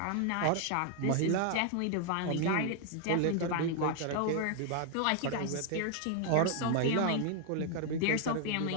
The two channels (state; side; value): different; both; correlation 0.00